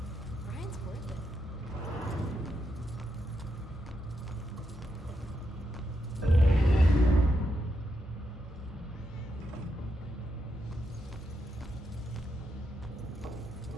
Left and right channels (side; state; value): both; normal; correlation 0.83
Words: Brian's worth it.